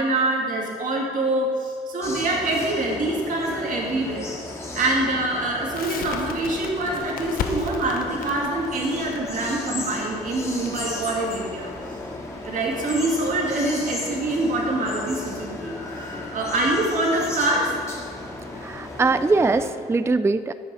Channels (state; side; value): normal; both; correlation 0.43